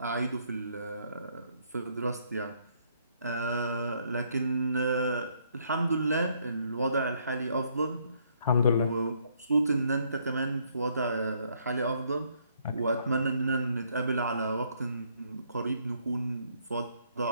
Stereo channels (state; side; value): inverted; both; correlation -0.69